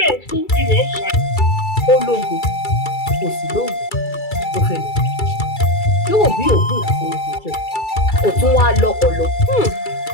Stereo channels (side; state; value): right; late; 2.3 ms